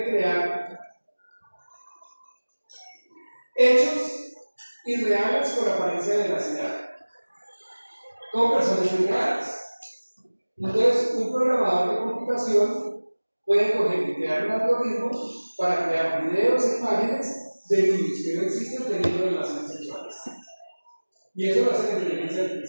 crear hechos irreales con apariencia de veracidad, con personas irreales. Entonces, un programador de computación puede coger y crear un algoritmo para crear videos e imágenes de niños que no existen teniendo relaciones sexuales. Y eso lo hace la inteligencia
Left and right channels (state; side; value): inverted; both; correlation -1.00